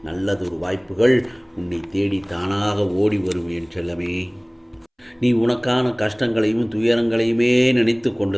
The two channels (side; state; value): both; identical; correlation 1.00